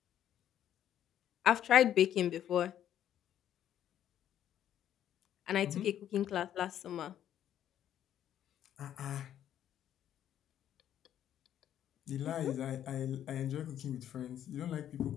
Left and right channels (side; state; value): right; quieter; 10.7 dB